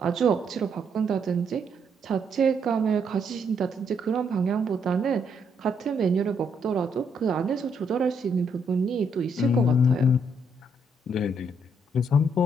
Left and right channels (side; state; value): both; normal; correlation 0.73